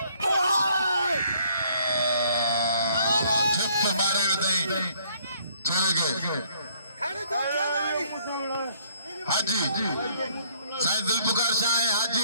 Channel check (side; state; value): both; inverted; correlation -0.63